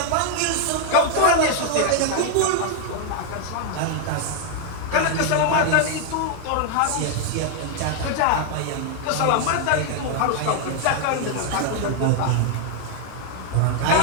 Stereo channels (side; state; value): both; different; correlation 0.00